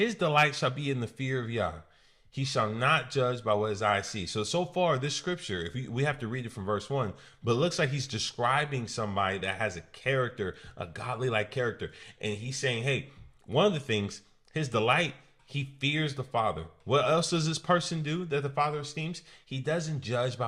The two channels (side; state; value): both; identical; correlation 1.00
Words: delight shall be in the fear of Yah. He shall not judge by what his eyes see. So far, this scripture, if we have to read it from verse 1, but it looks like he's describing somebody that has a character, a godly-like character. And he's saying, hey, one of the things, his delight, he fears the Father. What else does this person do that the Father esteems? He doesn't judge